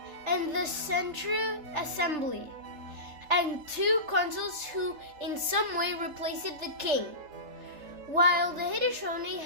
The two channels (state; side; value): late; left; 3.3 ms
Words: and the Central Assembly, and two consuls who in some way replaced the king, while the Haudenosaunee